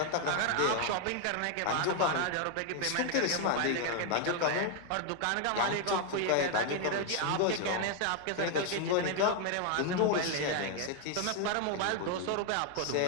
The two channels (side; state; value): both; different; correlation 0.00